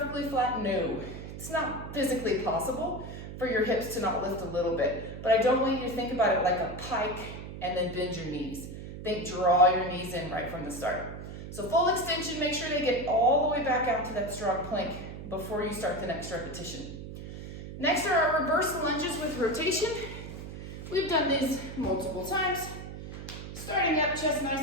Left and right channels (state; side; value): noise; right; hum, 10 dB below the sound